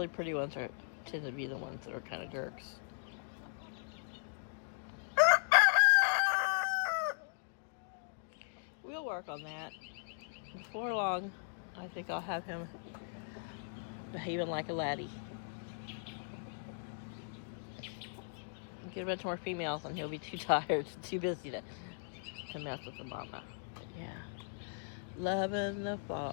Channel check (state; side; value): silent; right; digital silence